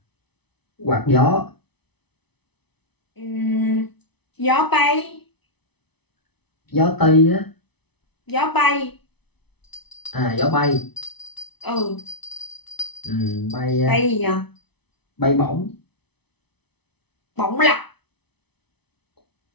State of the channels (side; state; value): right; late; 0.99 ms